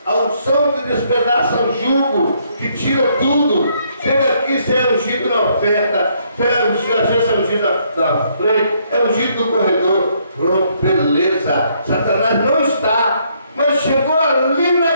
a unção que despedaça o jugo, que tira tudo. Chega aqui, você é ungido na oferta, você é ungido, às vezes é ungido na frente, é ungido no corredor. Pronto, beleza. Satanás não está, mas chegou ali na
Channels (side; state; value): both; inverted; correlation -0.70